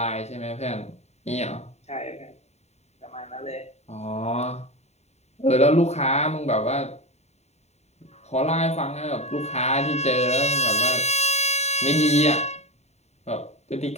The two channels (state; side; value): late; right; 0.32 ms